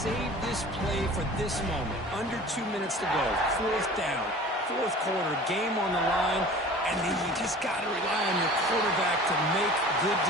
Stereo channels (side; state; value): both; normal; correlation 0.42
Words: this play for this moment. Under 2 minutes to go. 4th down. 4th quarter. Game on the line. And then you just got to rely on your quarterback to make good